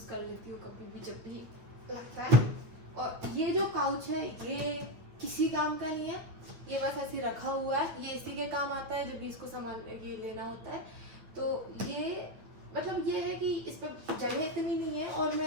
कर लेती हूँ कभी भी जब भी लगता है। और ये जो पाउच है ये किसी काम का नहीं है, ये बस ऐसे रखा हुआ है, ये इसी के काम आता है जब भी इसको सामान ये लेना होता है। तो ये मतलब ये है कि इस पर जगह इतनी नहीं है और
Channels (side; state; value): left; late; 9.2 ms